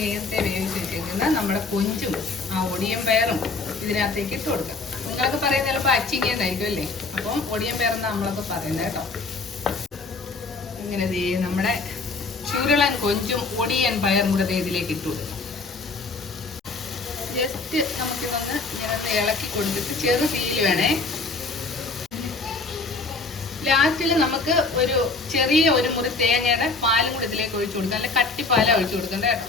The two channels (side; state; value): right; quieter; 3.7 dB